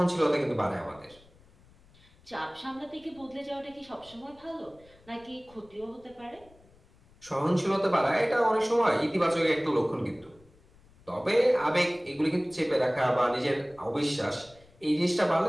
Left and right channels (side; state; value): left; noise; rumble, 28 dB below the sound